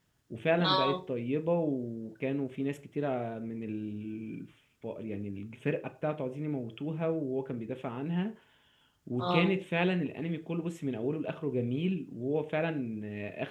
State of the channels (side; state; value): both; identical; correlation 1.00